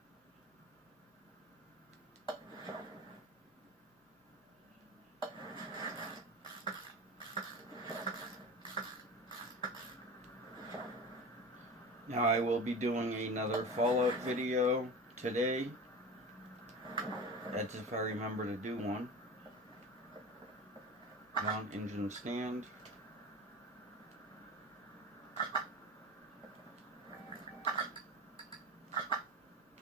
Now I will be doing another Fallout video today. That's if I remember to do one. Mount engine stand.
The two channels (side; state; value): both; normal; correlation 0.31